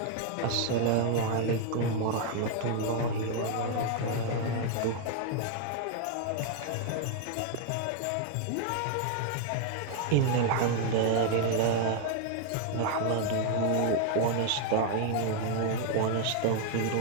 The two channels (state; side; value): different; both; correlation 0.00